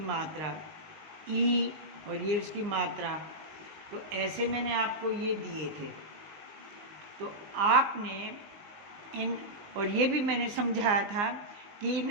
मात्रा, ई और ये उसकी मात्रा। तो ऐसे मैंने आपको ये दिए थे, तो आपने इन, और ये भी मैंने समझाया था कि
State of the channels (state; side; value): late; left; 19 ms